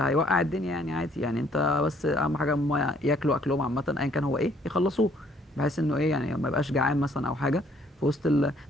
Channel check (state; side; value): normal; both; correlation 0.64